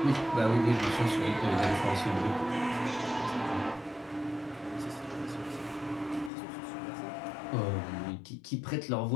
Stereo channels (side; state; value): right; drops out; at 6.3 s